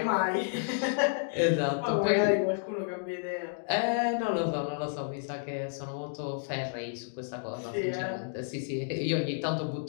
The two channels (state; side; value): silent; right; digital silence